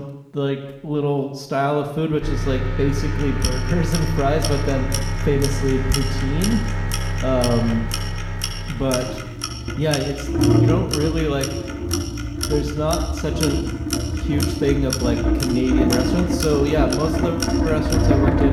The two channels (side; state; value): both; identical; correlation 1.00